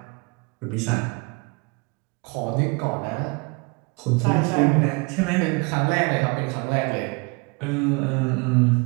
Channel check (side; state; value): left; quieter; 30.0 dB